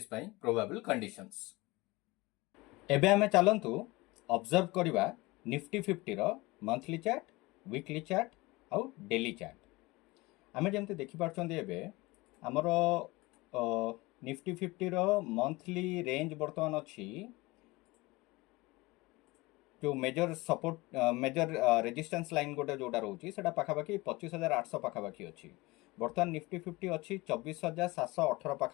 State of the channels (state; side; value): quieter; right; 22.3 dB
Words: प्रोबेबल कंडीशंस। एबे हमें चलतु ऑब्जर्व करवा निफ्टी 50 रो मंथली चार्ट, वीकली चार्ट आउ डेली चार्ट। आमे जेमते देखि पारछन्ते एबे हमरो निफ्टी 50 रो मंथली रेंज वर्तमान अछि जो major support major resistance line गोटे जोटा रोचे से पाखापाखि 25,800 पाखापाखि अच्छी। बर्तमान निफ्टी 50 अच्छी 24,718